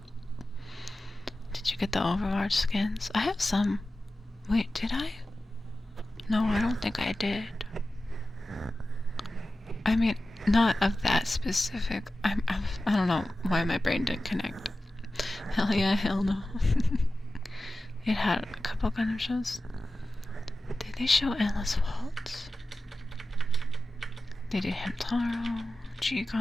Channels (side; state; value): both; normal; correlation 0.94